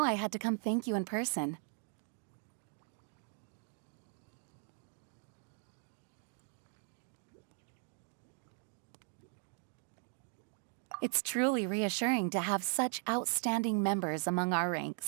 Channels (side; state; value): left; silent; 52 dB below the other